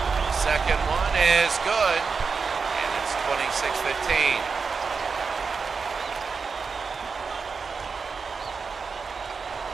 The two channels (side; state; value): left; quieter; 5.1 dB